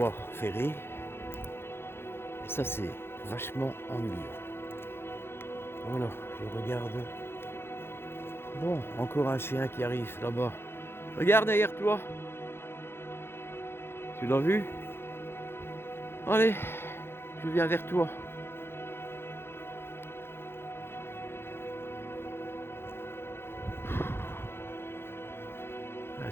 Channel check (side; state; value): right; late; 0.11 ms